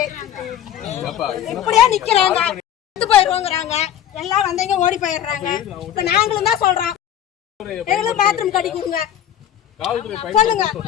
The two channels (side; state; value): right; quieter; 10.6 dB